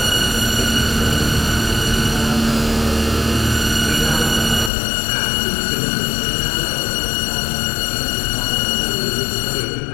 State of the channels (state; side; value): drops out; right; at 4.7 s